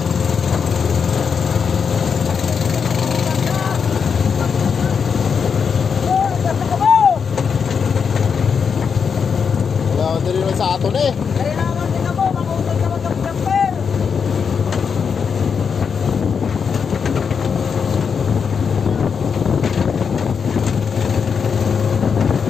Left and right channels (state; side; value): quieter; right; 6.3 dB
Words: Sa ato na eh. Kaya naman din ako, makuntag ka mag-jumper.